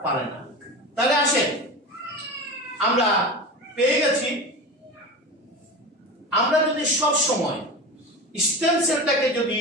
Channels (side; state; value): both; normal; correlation 0.28